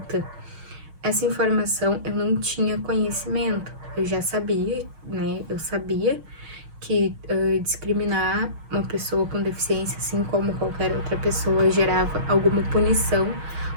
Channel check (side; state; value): left; late; 6.4 ms